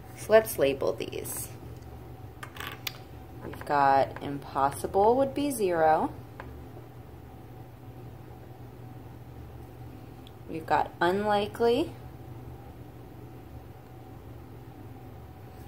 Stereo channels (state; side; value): identical; both; correlation 1.00